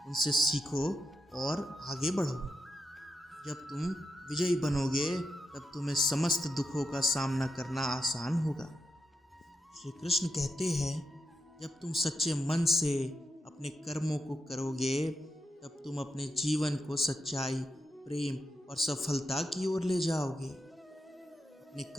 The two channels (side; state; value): both; normal; correlation 0.84